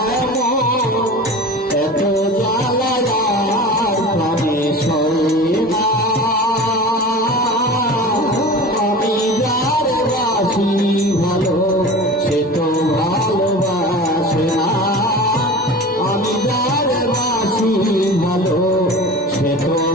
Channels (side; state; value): both; normal; correlation 0.35